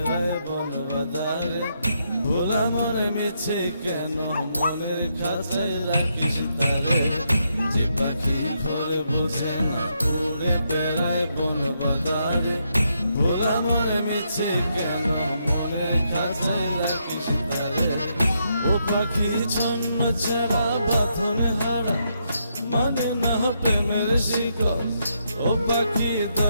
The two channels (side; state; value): both; inverted; correlation -0.79